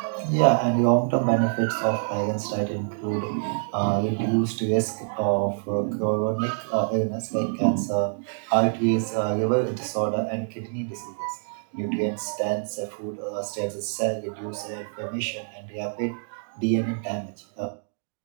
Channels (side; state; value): left; silent; digital silence